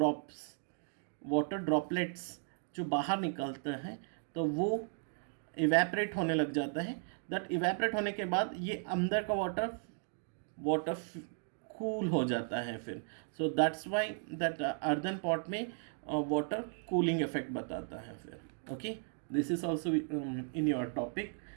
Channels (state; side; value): silent; left; 54 dB below the other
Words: ड्रॉपलेट्स जो बाहर निकलते हैं, तो वो इवेपरेट होने लग जाता है। दैट इवेपरेट होने के बाद ये अंदर का वाटर कूल हो जाता है फिर। So that's why that earthen pot में वाटर कूलिंग इफेक्ट बताता है फिर। Okay, this is also in your topic.